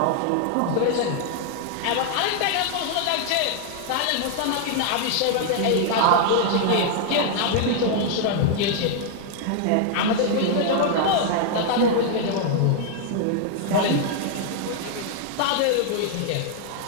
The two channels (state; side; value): different; both; correlation 0.00